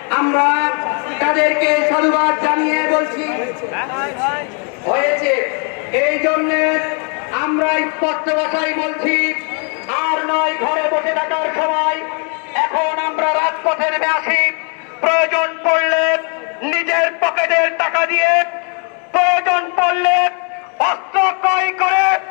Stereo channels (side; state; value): right; quieter; 38.8 dB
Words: আমরা তাদেরকে সাধুবাদ জানিয়ে বলছি হয়েছে, এই জন্যে আমরা স্পষ্ট ভাষায় বলছি, আর নয় ঘরে বসে থাকার সময়, এখন আমরা রাজপথে নেমে আসি। প্রয়োজন পড়লে নিজের পকেটের টাকা দিয়ে, প্রয়োজন পড়লে অস্ত্র ক্রয় করে,